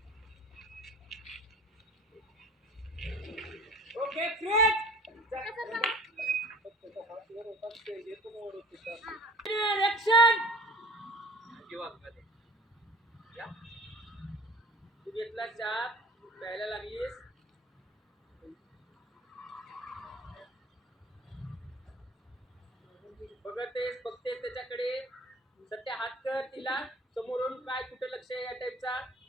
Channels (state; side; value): normal; both; correlation 0.46